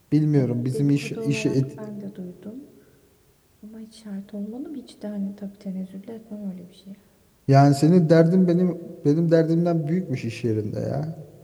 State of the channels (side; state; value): both; identical; correlation 1.00